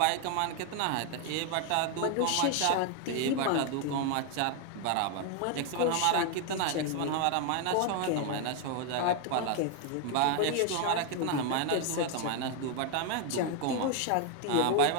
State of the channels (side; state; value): both; different; correlation 0.01